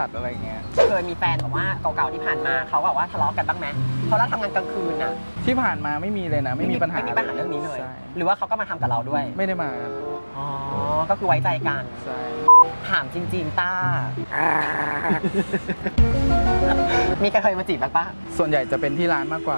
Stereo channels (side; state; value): both; inverted; correlation -1.00